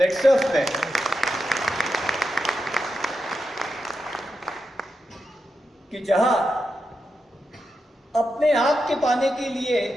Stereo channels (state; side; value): normal; both; correlation 0.88